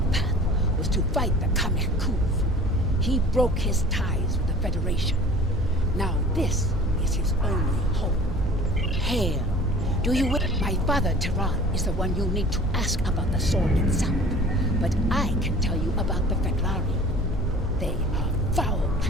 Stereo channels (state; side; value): normal; both; correlation 0.45